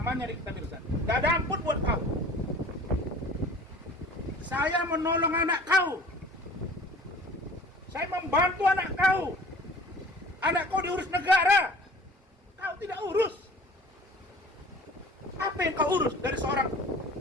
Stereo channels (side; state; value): both; normal; correlation 0.46